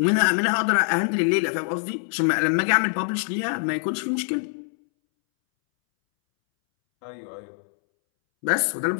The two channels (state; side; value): silent; right; 63 dB below the other